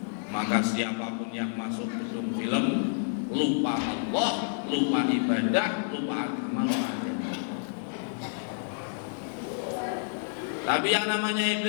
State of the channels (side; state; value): right; silent; digital silence